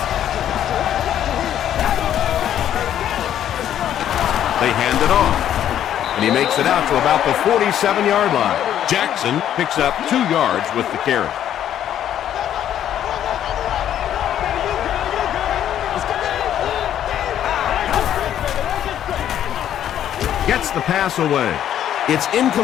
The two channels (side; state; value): right; quieter; 10.7 dB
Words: They hand it off, and he makes it out to about the 47-yard line. Jackson picks up 2 yards with the carry. Gets the pass away. It's